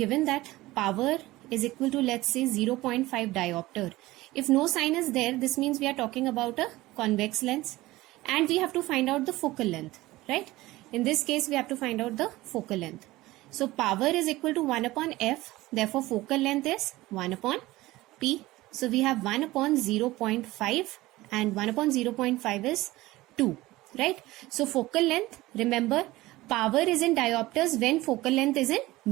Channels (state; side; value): quieter; left; 18.5 dB